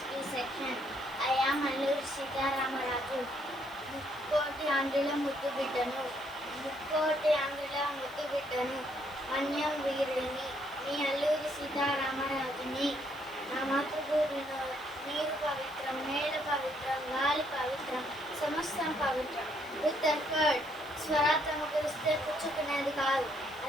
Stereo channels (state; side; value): noise; right; hiss, 24 dB below the sound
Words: B section. I am Alluri Sitaramarazu. ముక్కోటి ఆంధ్రుల ముద్దు బిడ్డను ముక్కోటి ఆంధ్రుల ముద్దు బిడ్డను మన్యం వీరుడిని మీ అల్లూరి సీతారామరాజుని. నా మాతృభూమిలో నీరు పవిత్రం, నేల పవిత్రం, గాలి పవిత్రం, సమస్తం పవిత్రం. విత్ ఎఫర్ట్ స్వరాత్మకు ఇస్తే పుచ్చుకునేది కాదు,